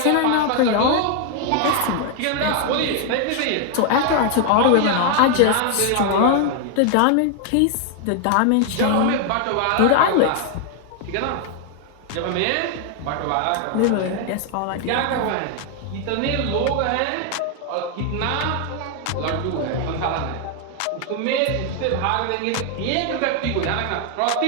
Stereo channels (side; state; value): both; different; correlation 0.00